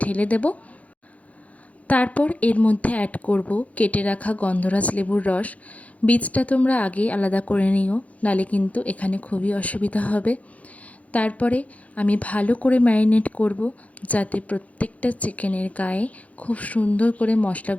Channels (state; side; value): late; right; 0.068 ms